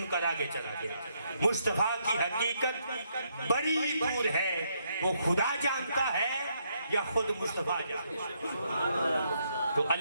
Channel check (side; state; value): both; inverted; correlation -0.75